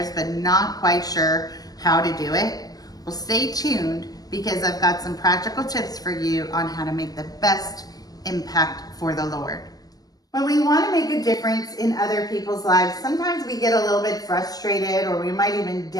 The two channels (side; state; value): right; late; 0.18 ms